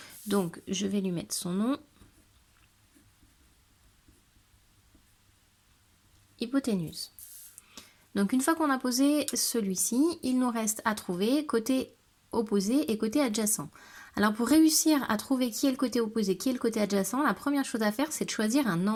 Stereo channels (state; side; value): identical; both; correlation 1.00